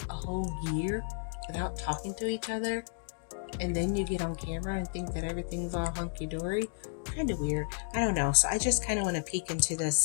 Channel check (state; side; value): silent; right; digital silence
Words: a whole year without talking to each other? And then you get on camera and think that everything's all hunky-dory. Kind of weird. I don't know. So I just kind of want to peek into the